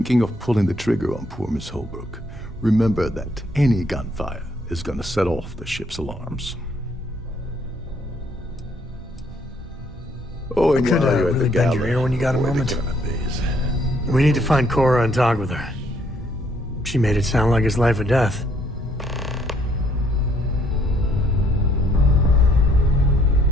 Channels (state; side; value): normal; both; correlation 0.67